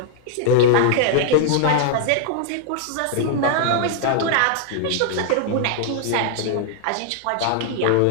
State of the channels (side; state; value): both; different; correlation -0.01